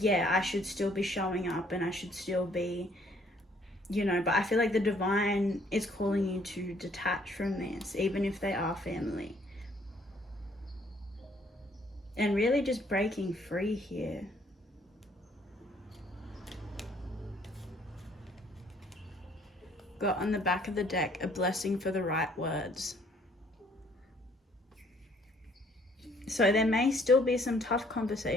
I should still be showing up and I should still be, you know, but I feel like the divine is calling you to detach from this, even if they are family. And really just breaking free here. Got on the back of the deck, a blessing for the right words. So there may still be some tough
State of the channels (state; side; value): normal; both; correlation 0.63